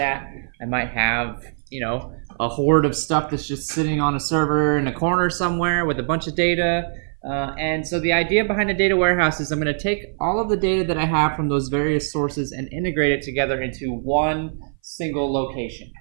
I might have, a horde of stuff that's just sitting on a server in a corner somewhere with a bunch of data. And so the idea behind a data warehouse is I'm going to take all of the data that I have from those various sources and integrate it together into one single location.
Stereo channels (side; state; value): left; silent; 59 dB below the other